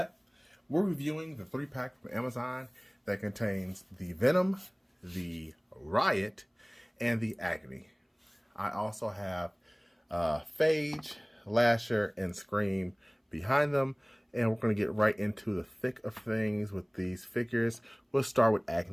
we're reviewing the 3-pack from Amazon that contains the Venom, the Riot, and the Agony. I also have Phage, Lasher, and Scream behind them, and we're going to get right into the thick of things with these figures. We'll start with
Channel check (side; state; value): both; identical; correlation 1.00